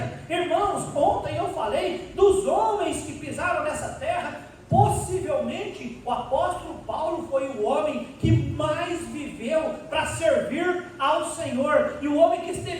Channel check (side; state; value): both; identical; correlation 1.00